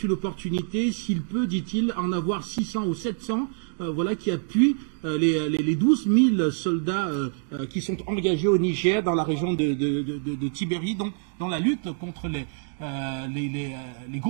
une opportunité, s'il peut, dit-il, en avoir 600 ou 700 voilà, qui appuient les 12 000 soldats qui sont engagés au Niger dans la région de Tibéri, donc dans la lutte contre les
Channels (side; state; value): left; silent; 61 dB below the other